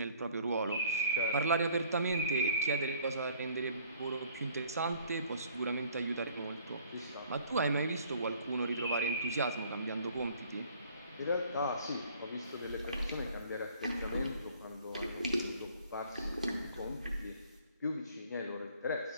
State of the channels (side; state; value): both; inverted; correlation -0.56